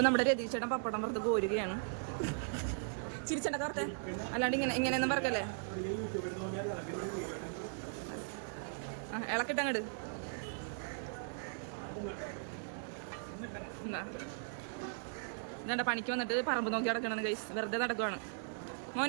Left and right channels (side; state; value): left; silent; digital silence